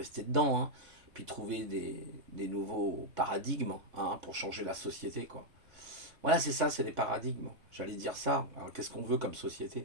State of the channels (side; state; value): left; late; 3.2 ms